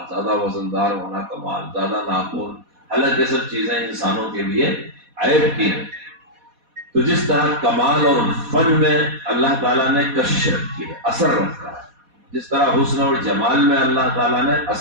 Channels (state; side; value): late; left; 4.1 ms